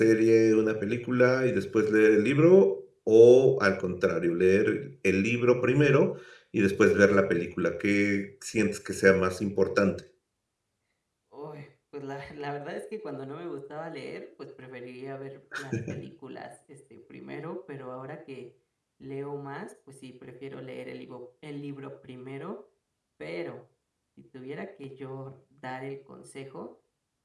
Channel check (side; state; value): both; identical; correlation 1.00